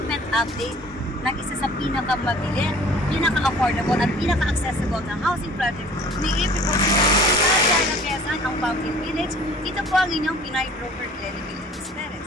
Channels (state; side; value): normal; both; correlation 0.50